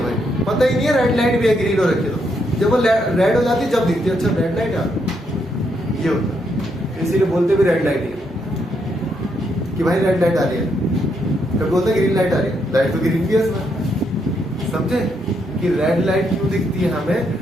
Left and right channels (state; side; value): normal; both; correlation 0.77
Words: भाई, पता ही नहीं है रेड लाइट भी है, ग्रीन हो रखी है, तो जब वो रेड हो जाती है जब दिखती है, अच्छा रेड लाइट यार, ये होता है। इसीलिए बोलते भी रेड लाइट है कि भाई रेड लाइट आ रही है, कभी बोलते ग्रीन लाइट आ रही है, लाइट तो ग्रीन भी है इसमें, समझे कि रेड लाइट क्यों दिखती है हमें,